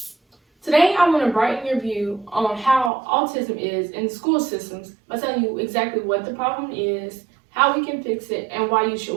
Today, I want to brighten your view on how autism is in the school systems by telling you exactly what the problem is, how we can fix it, and why you should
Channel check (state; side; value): drops out; left; at 2.9 s